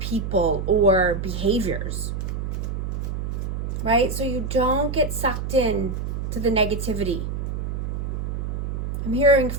or behaviors, right? So you don't get sucked in to the negativity. I'm hearing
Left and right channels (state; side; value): noise; right; hum, 3 dB below the sound